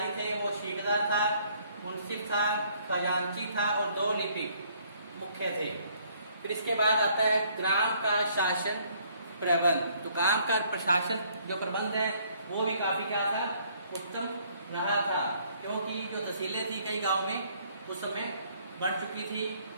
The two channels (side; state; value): both; inverted; correlation -0.64